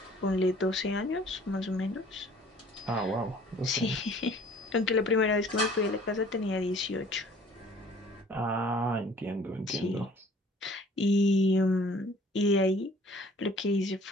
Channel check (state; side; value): normal; both; correlation 0.53